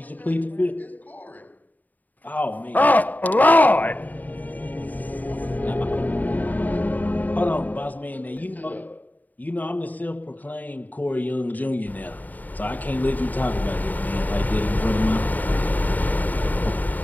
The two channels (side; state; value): right; late; 0.082 ms